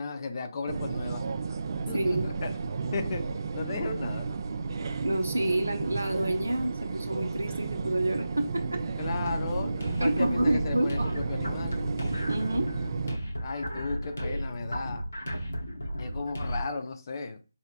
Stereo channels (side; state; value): both; inverted; correlation -0.90